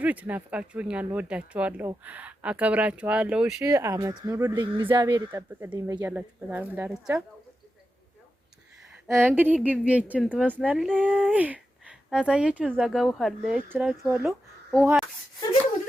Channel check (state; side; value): normal; both; correlation 0.90